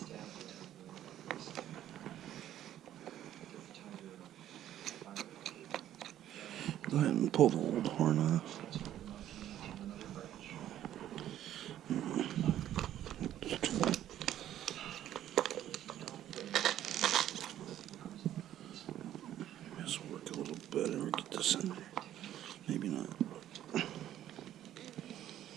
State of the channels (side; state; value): left; quieter; 11.9 dB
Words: Go ahead and pull the old horn off. This will work a little better. Get this in there. Maybe not.